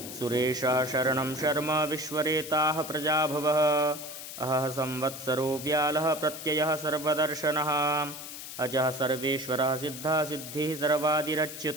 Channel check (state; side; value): noise; left; hiss, 10 dB below the sound